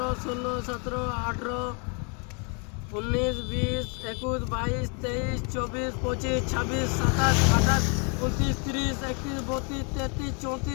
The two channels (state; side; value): quieter; right; 35.5 dB